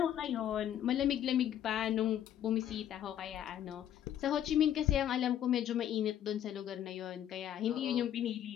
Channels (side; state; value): right; quieter; 10.7 dB